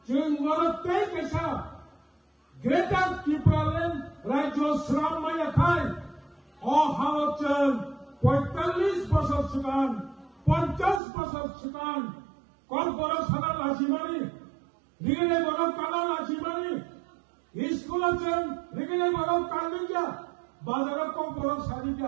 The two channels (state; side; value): drops out; left; at 11.0 s